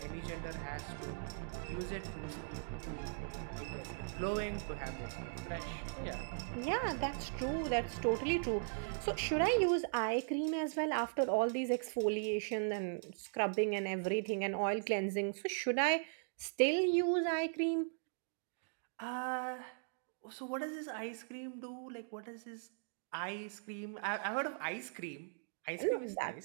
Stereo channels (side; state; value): left; silent; digital silence